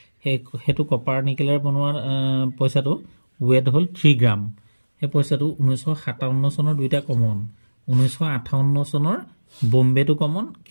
সেইটো কপাৰ নিকেলৰ বনোৱা পইচাটো ৱেট হ'ল 3 গ্ৰাম। সেই পইচাটো 1957 চনৰ দুইটা কমন, 1958 চনৰ বম্বেটো কমন,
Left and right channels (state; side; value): inverted; both; correlation -1.00